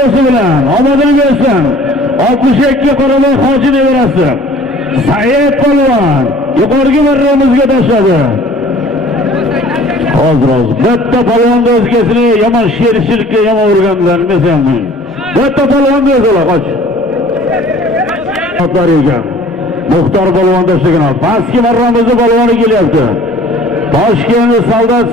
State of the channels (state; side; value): normal; both; correlation 0.50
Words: bilan omadini bersin. 62 Qorabek hoji nevarasi Said polvon yuqorgi marramizga tashladi. Hozir bitta polvonni o'zgasini yomon sherishlikka yomon urganlar desammi. Bitta polvonni o'zlar qoch. Otlar ekan. Muxtor polvon tashlagan. Pastki marramizning polvoni kelyapti. Toshkent